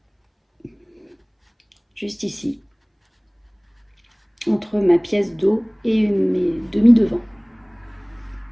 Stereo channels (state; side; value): identical; both; correlation 1.00